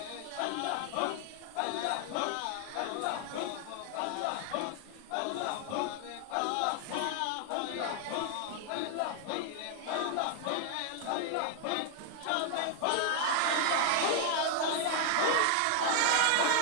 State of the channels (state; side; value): different; both; correlation 0.00